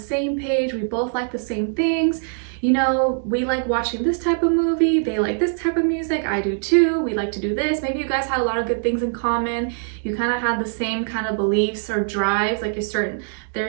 same page. We both like the same things. You know, we like watching this type of movie. They like this type of music. I do too. We like to do this. Maybe you guys had a lot of good things in common. You kind of had the same kind of beliefs or drives. Like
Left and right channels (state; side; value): silent; left; digital silence